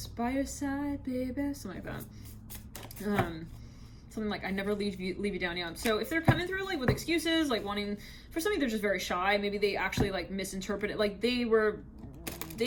By Your Side, Baby, something like that. Something like I never leave you down. Yeah. So if they're coming through like with excuses, like wanting, for some of you they're just very shy. Maybe they actually like misinterpret it. Like they were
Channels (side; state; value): both; identical; correlation 1.00